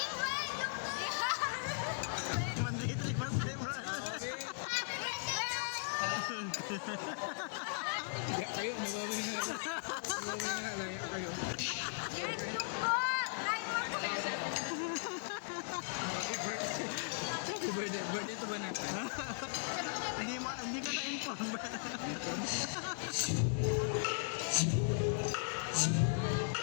mandritri, bro. Ya kayo, nababay na. Nababay na, laya kayo. Yes, tungkol! Try mo! Happy birthday. Birthday ito ba natin? Hindi ko na-inform ba?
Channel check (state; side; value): silent; right; digital silence